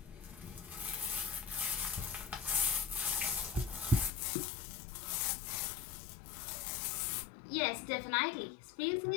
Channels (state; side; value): drops out; right; at 4.2 s